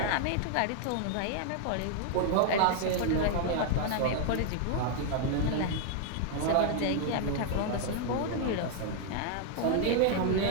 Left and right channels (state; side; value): different; both; correlation 0.00